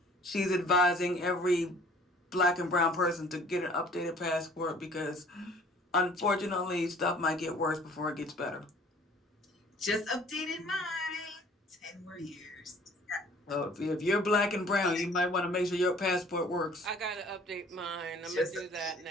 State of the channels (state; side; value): normal; both; correlation 0.53